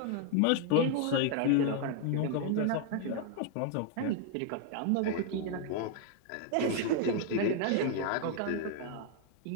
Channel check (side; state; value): both; different; correlation 0.00